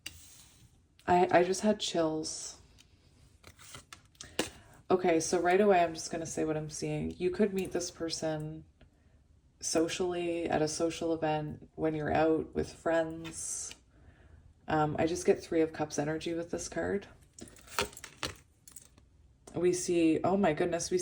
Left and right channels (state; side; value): identical; both; correlation 1.00